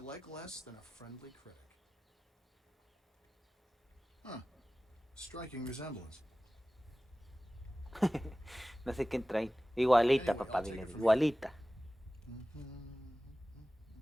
less than a friendly critic. Huh. Striking resemblance. No sé qué traen. Igualita, Anyway, papá, I'll take dile. it from Igualita.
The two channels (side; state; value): both; normal; correlation 0.96